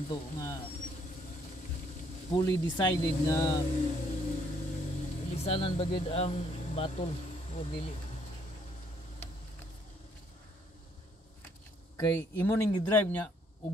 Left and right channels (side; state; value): both; normal; correlation 0.67